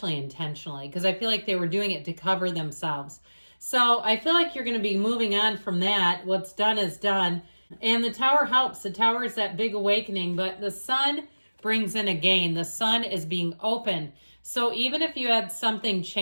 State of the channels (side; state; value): both; inverted; correlation -1.00